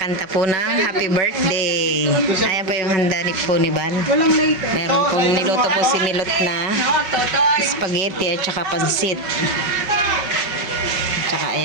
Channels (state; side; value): late; left; 5.3 ms